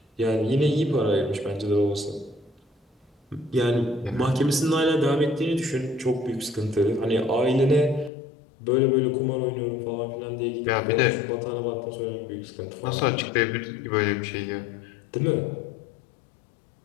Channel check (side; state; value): right; drops out; at 8.1 s